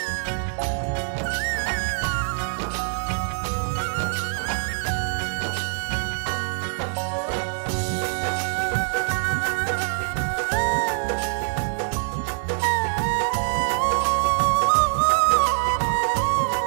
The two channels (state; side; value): silent; left; digital silence